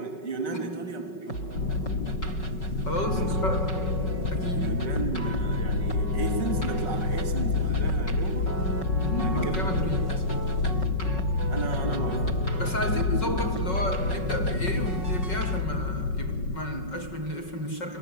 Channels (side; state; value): right; late; 5.4 ms